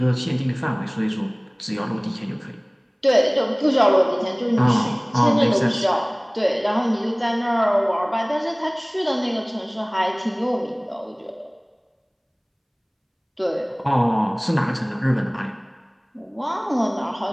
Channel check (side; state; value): both; identical; correlation 1.00